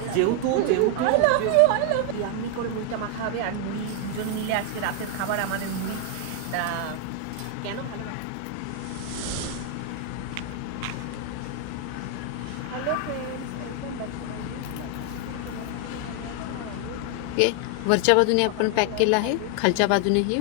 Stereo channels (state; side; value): different; both; correlation 0.00